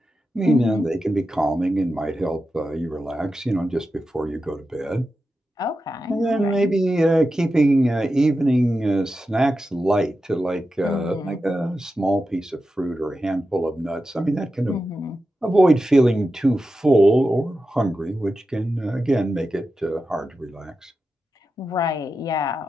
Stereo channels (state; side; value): normal; both; correlation 0.91